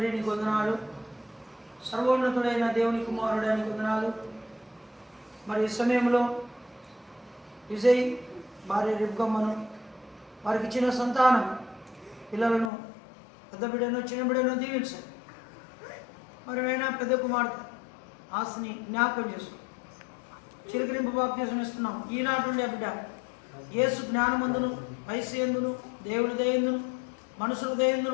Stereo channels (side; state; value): right; drops out; at 12.7 s